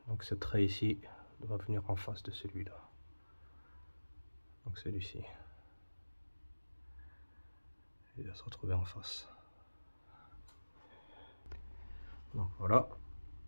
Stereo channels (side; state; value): both; inverted; correlation -1.00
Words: Donc ce trait ici doit venir en face de celui-là. Donc celui-ci. Il va se retrouver en face. Donc voilà.